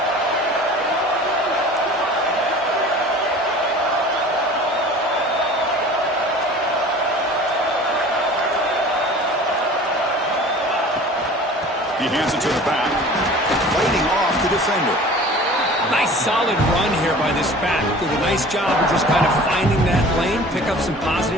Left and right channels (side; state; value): both; normal; correlation 0.43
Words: He hands it to the back. Fighting off the defender. Nice solid run here by this back. Did a nice job of just kind of finding that lane, pick up some